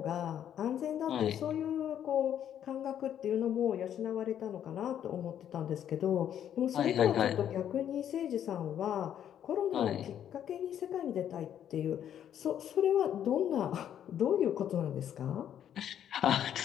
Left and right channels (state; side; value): quieter; right; 9.9 dB